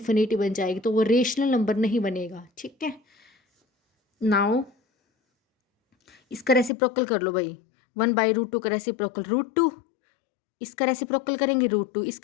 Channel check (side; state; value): right; drops out; at 6.7 s